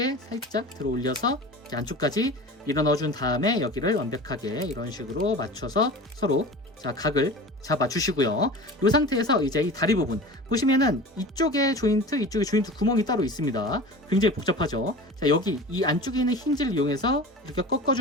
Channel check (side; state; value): both; normal; correlation 0.35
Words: 살짝 들어 올려서 이렇게 안쪽까지 밀어 넣어준 다음에 여기를 완벽하게 이런 식으로 맞춰서 서로 자, 각을 잡아 주시고요. 이 상태에서 이제 이 다리 부분 보시면은 이쪽에 조인트 구멍이 따로 있습니다. 굉장히 복잡하죠. 자, 여기 이 안쪽에 있는 힌지를 이용해서 이렇게